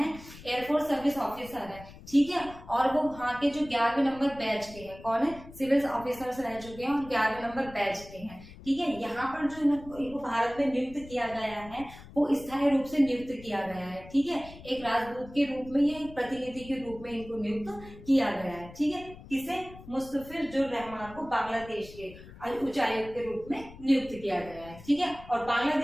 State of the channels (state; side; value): noise; left; rumble, 17 dB below the sound